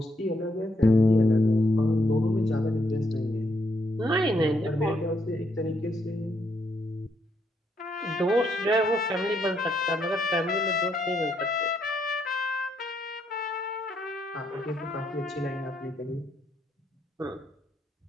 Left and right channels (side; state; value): both; normal; correlation 0.76